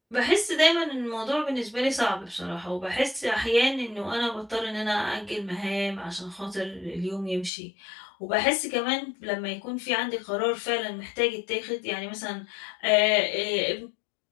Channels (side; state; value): right; drops out; at 7.5 s